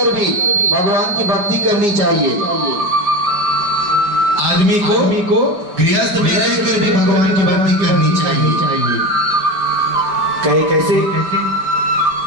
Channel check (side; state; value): left; late; 4.9 ms